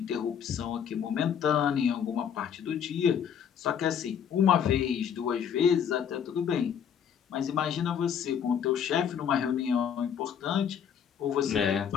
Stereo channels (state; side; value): quieter; right; 8.1 dB